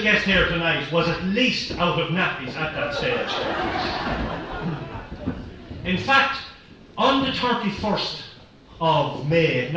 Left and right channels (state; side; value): identical; both; correlation 1.00